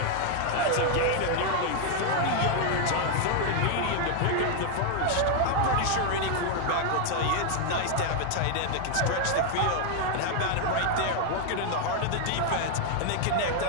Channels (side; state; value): both; different; correlation 0.01